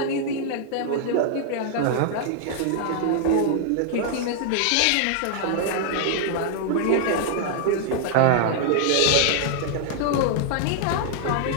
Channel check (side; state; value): both; different; correlation 0.00